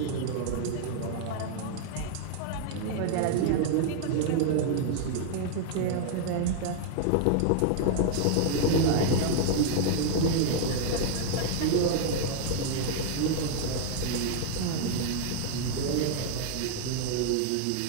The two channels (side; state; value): both; different; correlation 0.00